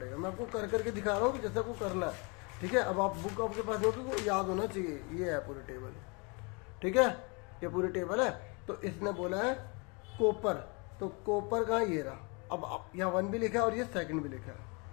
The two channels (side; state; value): right; quieter; 31.3 dB